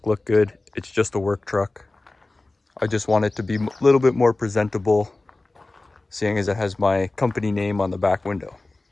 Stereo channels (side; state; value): right; quieter; 3.1 dB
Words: look good. It's just a work truck. I just want it to be a little bit more presentable, seeing as it has my company name on the back window.